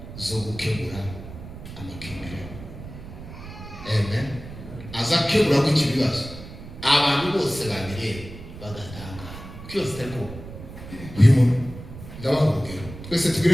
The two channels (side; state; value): right; noise; rumble, 13 dB below the sound